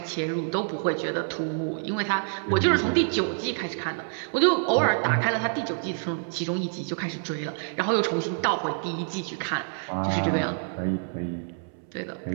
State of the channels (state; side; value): silent; left; 60 dB below the other